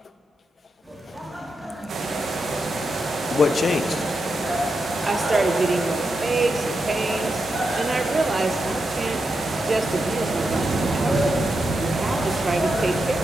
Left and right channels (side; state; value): both; normal; correlation 0.86